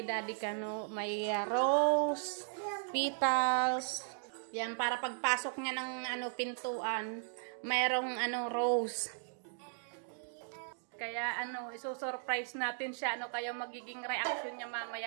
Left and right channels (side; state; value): left; silent; digital silence